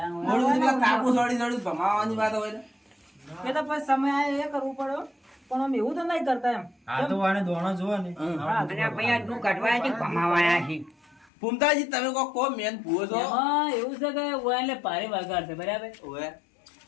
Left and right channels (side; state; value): right; drops out; at 11.3 s